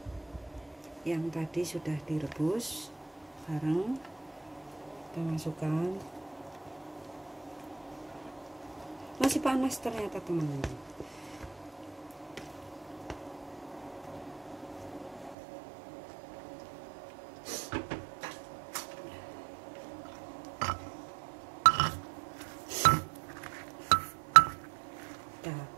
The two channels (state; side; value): drops out; left; at 15.4 s